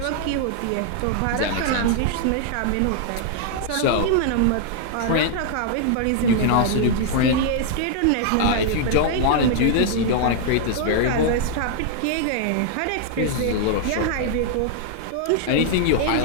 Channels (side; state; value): both; different; correlation 0.00